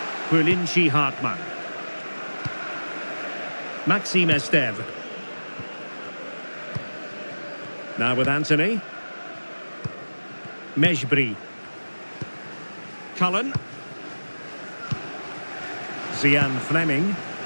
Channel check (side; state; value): both; inverted; correlation -1.00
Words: Bulinchi Hartmann. Maxime Esteve. Now with Anthony. Mejbri. Cullen. Zian Fleming.